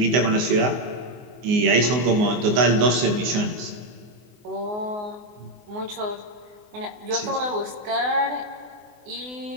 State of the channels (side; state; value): left; late; 24 ms